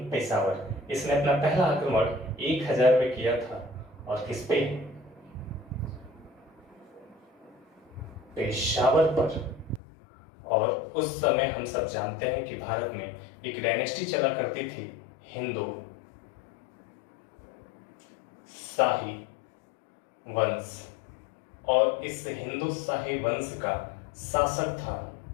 पेशावर। इसने अपना पहला आक्रमण 1000 में किया था। और किस पे? पेशावर पर। और उस समय हम सब जानते हैं कि भारत में एक डायनेस्टी चला करती थी, हिंदू शाही वंश, और इस हिंदू शाही वंश का शासक था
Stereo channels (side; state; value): right; drops out; at 9.8 s